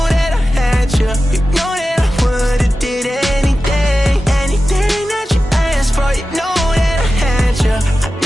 that I had you. You know that I would've did anything. Anything that you asked for. You know that I had you. I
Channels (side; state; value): both; normal; correlation 0.94